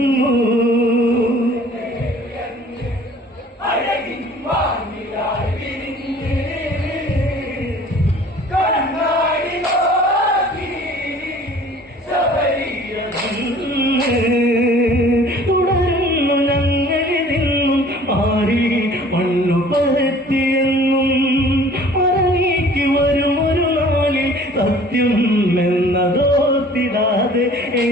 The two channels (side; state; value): both; normal; correlation 0.50